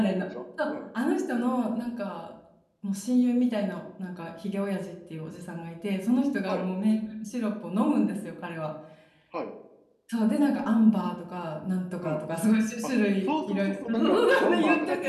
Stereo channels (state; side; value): identical; both; correlation 1.00